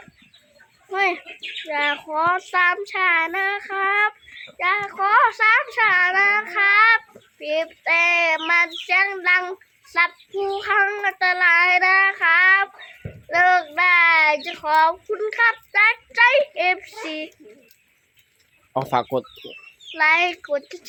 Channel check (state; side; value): identical; both; correlation 1.00